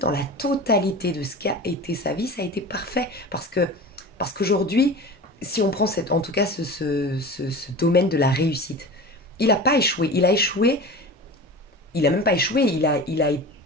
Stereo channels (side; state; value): both; normal; correlation 0.34